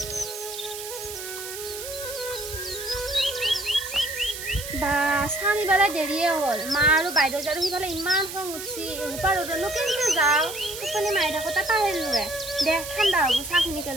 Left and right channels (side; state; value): right; noise; hiss, 9 dB below the sound